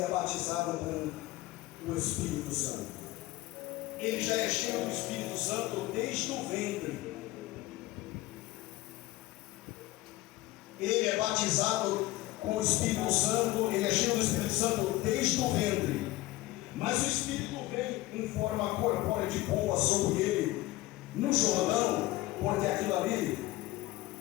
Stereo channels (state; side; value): quieter; right; 18.0 dB